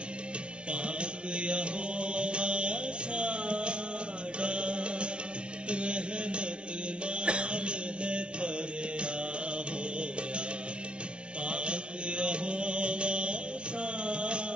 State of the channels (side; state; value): left; late; 0.058 ms